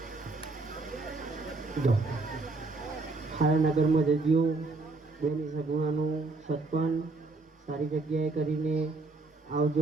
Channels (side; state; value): left; quieter; 3.5 dB